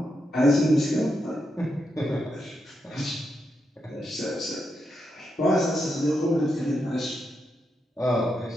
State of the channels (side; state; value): both; normal; correlation 0.84